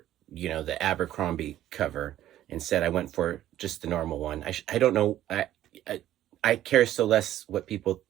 the Abercrombie cover. Instead, I went for just the normal one. I don't know. I care so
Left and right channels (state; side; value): quieter; left; 12.8 dB